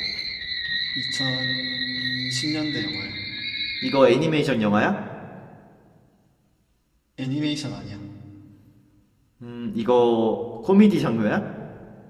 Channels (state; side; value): identical; both; correlation 1.00